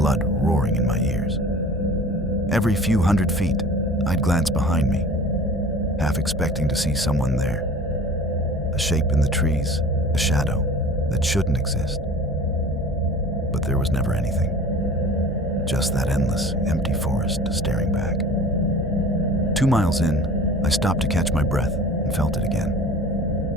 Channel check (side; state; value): both; normal; correlation 0.42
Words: roaring in my ears. Every few hundred feet, I'd glance behind me, half expecting to see someone there. A shape in the trees, a shadow that shouldn't exist. But there was never anything. Just that endless, empty forest staring back. 2 miles in, I stopped to catch my breath and felt it again.